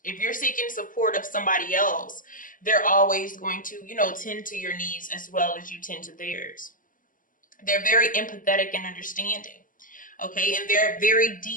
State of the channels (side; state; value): right; late; 0.39 ms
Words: If you're seeking support of somebody else, they're always going to, tend to your needs as well as you tend to theirs. They're very empathetic and understanding. Okay, and they're very